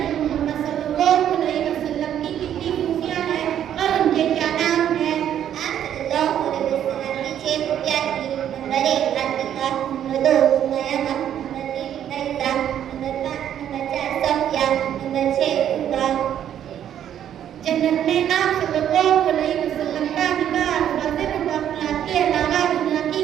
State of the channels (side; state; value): left; quieter; 10.2 dB